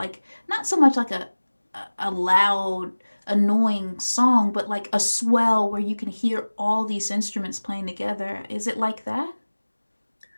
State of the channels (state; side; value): inverted; both; correlation -1.00